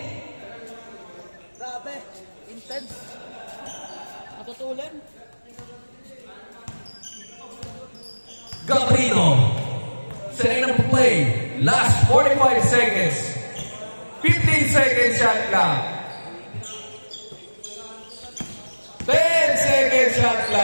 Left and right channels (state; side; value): inverted; both; correlation -1.00